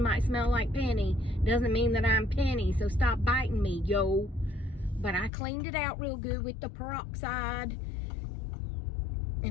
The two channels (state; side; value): drops out; right; at 5.3 s